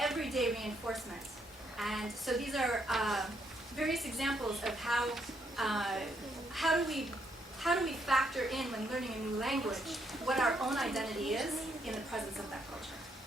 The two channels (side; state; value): both; normal; correlation 0.74